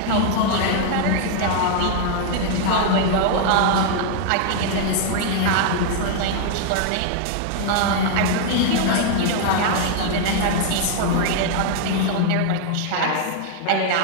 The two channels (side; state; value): both; different; correlation 0.00